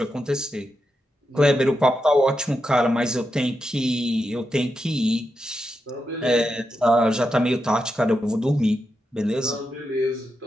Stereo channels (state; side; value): normal; both; correlation 0.86